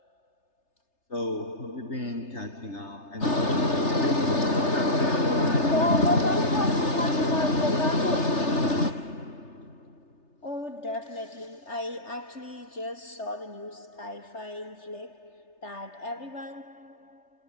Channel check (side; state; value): right; late; 3.3 ms